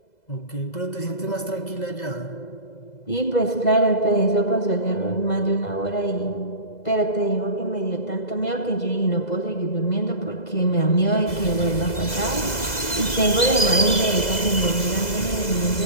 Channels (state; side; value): late; right; 2.0 ms